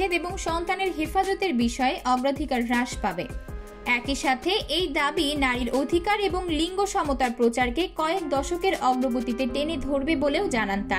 এবং সন্তানের হেফাজতের বিষয়ে অগ্রাধিকার হ্রাস পাবে। একই সাথে এই দাবি নারীর অধিকার এবং লিঙ্গ সমতার প্রচারকে কয়েক দশকের অগ্রগতিতে টেনে ধরবে বলেও জানান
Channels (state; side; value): identical; both; correlation 1.00